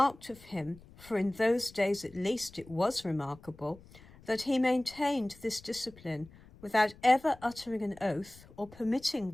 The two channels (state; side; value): noise; left; rumble, 23 dB below the sound